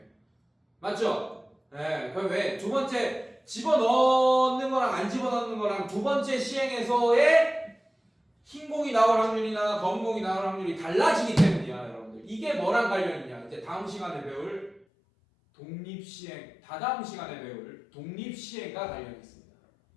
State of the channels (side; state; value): right; drops out; at 14.9 s